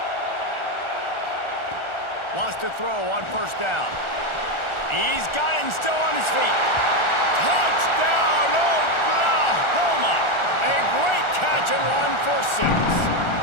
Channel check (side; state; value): right; late; 1.4 ms